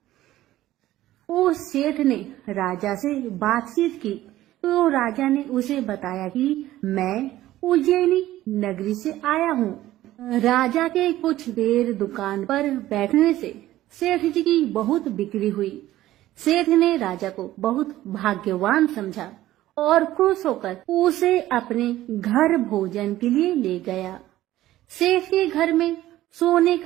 उस सेठ ने राजा से बातचीत की तो राजा ने उसे बताया कि मैं उज्जैनी नगरी से आया हूँ। राजा के कुछ देर दुकान पर बैठने से सेठ जी की बहुत बिक्री हुई। सेठ ने राजा को बहुत भाग्यवान समझा और खुश होकर उसे अपने घर भोजन के लिए ले गया। सेठ के घर में सोने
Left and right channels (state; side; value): quieter; left; 14.8 dB